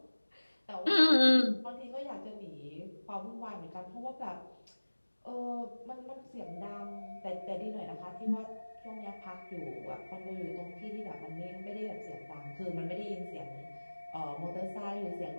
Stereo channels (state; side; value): inverted; both; correlation -1.00